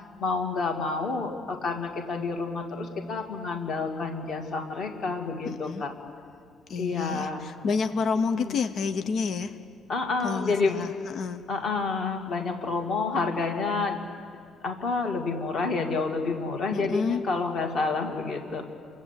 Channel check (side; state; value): right; quieter; 3.9 dB